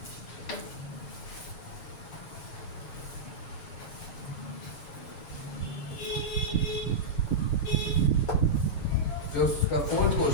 जो उसका फोर्थ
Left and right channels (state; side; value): late; right; 6.5 ms